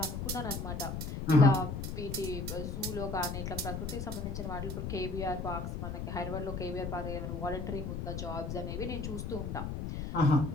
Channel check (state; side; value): noise; left; rumble, 4 dB below the sound